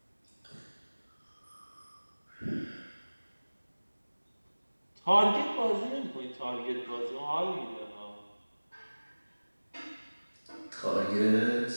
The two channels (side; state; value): both; inverted; correlation -1.00